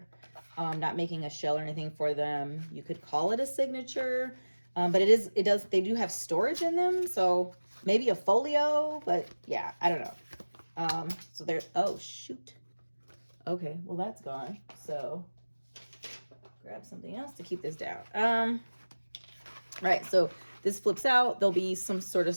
Not making a shell or anything for them. You could call it a signature, but they do have storage in them. So maybe a folio, but yeah, I don't know. So there's, oh shoot. Okay, well that's gone. So grab something else to keep this down. Right, so this flips out. There'll be some sort of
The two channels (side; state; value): both; inverted; correlation -1.00